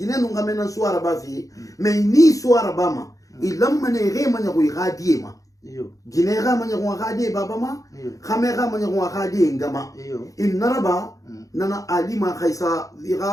no ngame nan suara ba fe mais ni suara ba ma ilamma ne re manya ko igadi ma gine ga manya ko igadi baba ma khame ga manya ko igadi ngama in naraba nana alima khaisa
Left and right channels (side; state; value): right; late; 0.16 ms